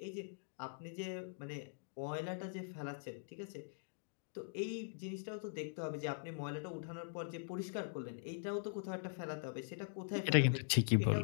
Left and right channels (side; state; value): right; silent; digital silence